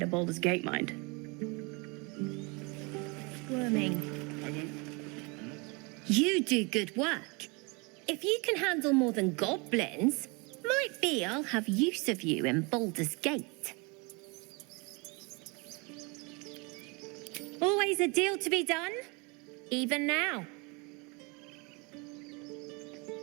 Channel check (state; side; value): quieter; left; 29.4 dB